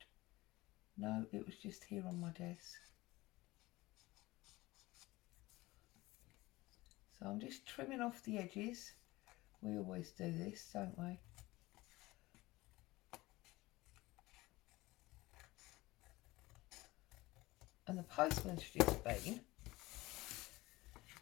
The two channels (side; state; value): right; quieter; 19.9 dB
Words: No, it was just here on my desk. So I'm just trimming off the edges. We always do this, don't we? And the postman's just been.